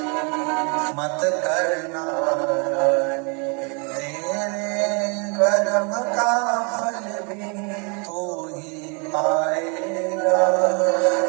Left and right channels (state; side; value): quieter; left; 35.5 dB